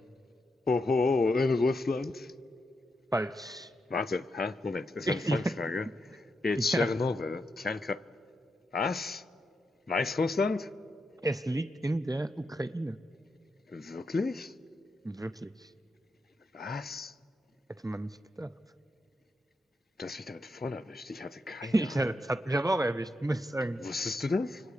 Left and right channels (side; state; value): both; normal; correlation 0.84